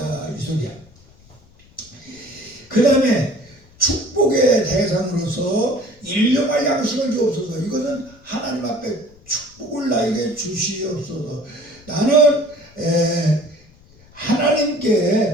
이 소리야. 그 다음에 축복의 대상으로서 일용할 양식을 주옵소서. 이것은 하나님 앞에 축복을 나에게 주시옵소서. 나는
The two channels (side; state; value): left; noise; rumble, 27 dB below the sound